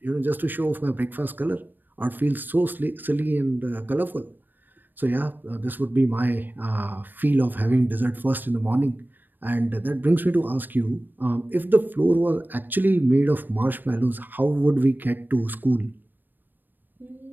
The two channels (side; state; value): left; late; 0.091 ms